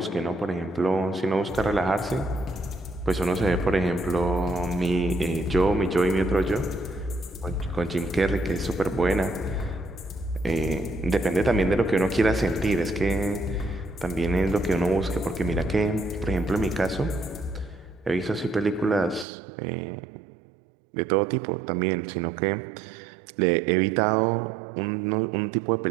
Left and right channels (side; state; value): left; drops out; at 19.2 s